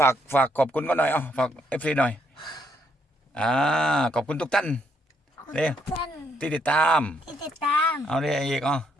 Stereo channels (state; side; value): normal; both; correlation 0.73